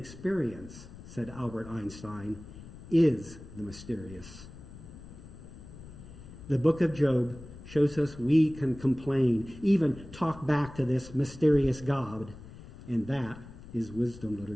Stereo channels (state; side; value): noise; left; rumble, 16 dB below the sound